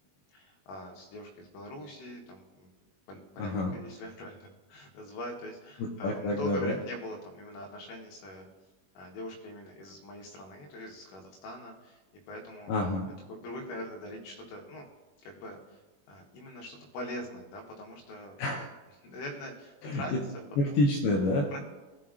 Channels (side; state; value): right; late; 21 ms